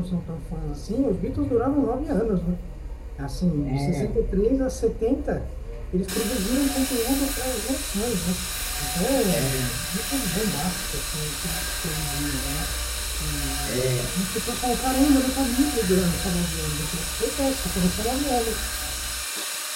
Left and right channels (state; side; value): identical; both; correlation 1.00